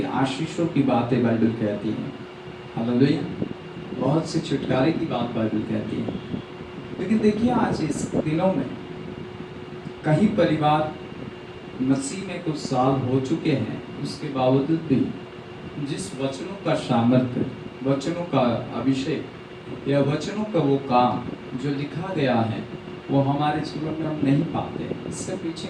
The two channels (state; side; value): identical; both; correlation 1.00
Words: आशीषों की बातें बाइबल कहती है। हालेलुया। बहुत से छुटकारे की बात बाइबल कहती है। लेकिन देखिए आज इस दिनों में कई परिवार मसीह में कुछ साल हो चुके हैं, उसके बावजूद भी जिस वचनों का सामर्थ्य, वचनों का अभिषेक या वचनों का वो काम जो लिखा गया है वो हमारे जीवन में हम नहीं पाते। इसके पीछे